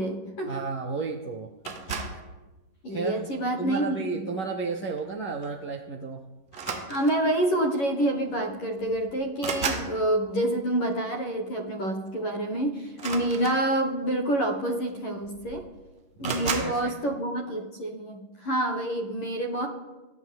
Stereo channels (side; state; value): right; late; 11 ms